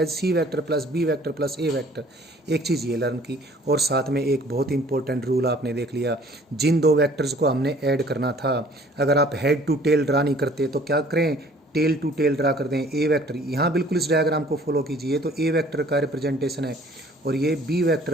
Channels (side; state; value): both; normal; correlation 0.54